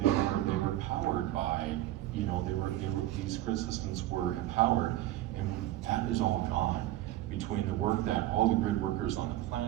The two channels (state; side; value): quieter; left; 14.8 dB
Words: were powered by, these grid systems were empowered, and that is all gone. Between the work that all the grid workers on the